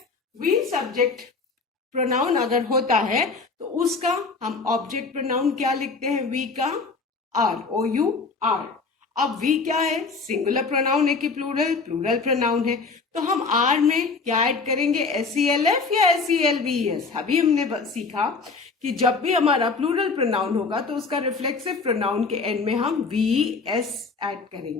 वी सब्जेक्ट प्रोनाउन अगर होता है तो उसका हम ऑब्जेक्ट प्रोनाउन क्या लिखते हैं, वी का आर, OUR. अब वी क्या है, सिंगुलर प्रोनाउन है कि प्लूरल, प्लूरल प्रोनाउन है. तो हम आर में क्या ऐड करेंगे, SELF या SELVES. अभी हमने सीखा कि जब भी हमारा प्लूरल प्रोनाउन होगा तो उसका रिफ्लेक्सिव प्रोनाउन के एंड में हम VS ऐड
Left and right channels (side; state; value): right; quieter; 4.4 dB